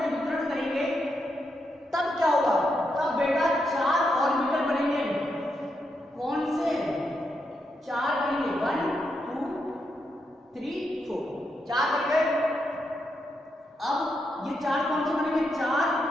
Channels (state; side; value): normal; both; correlation 0.82